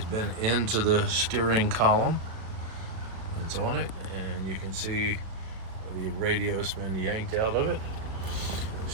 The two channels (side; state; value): left; late; 36 ms